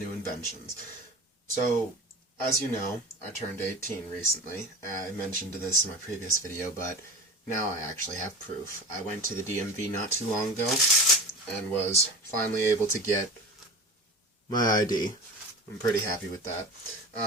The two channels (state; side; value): normal; both; correlation 0.31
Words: inventions. So, as you know, I turned 18 recently. I mentioned this in my previous video, but now I actually have proof. I went to the DMV not too long ago and was finally able to get my ID. I'm pretty happy with that.